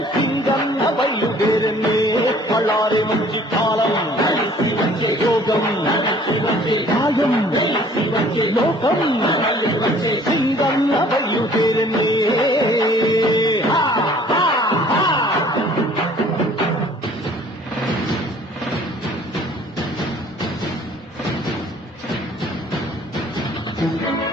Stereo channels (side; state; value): both; normal; correlation 0.54